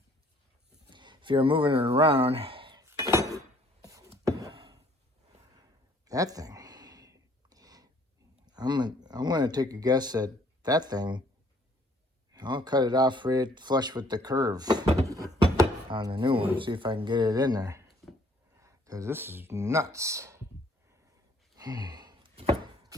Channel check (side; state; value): both; normal; correlation 0.60